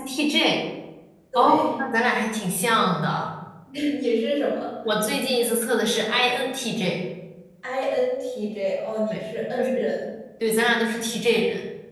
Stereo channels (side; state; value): both; identical; correlation 1.00